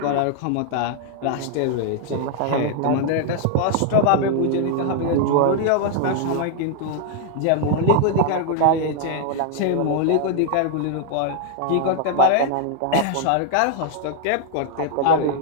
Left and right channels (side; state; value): both; different; correlation -0.01